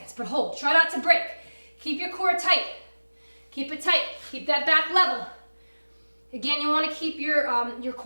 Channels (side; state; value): both; inverted; correlation -1.00